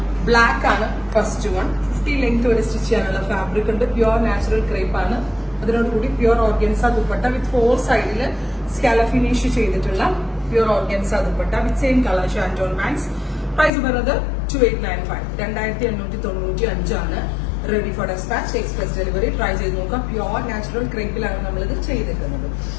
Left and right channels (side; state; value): right; drops out; at 13.7 s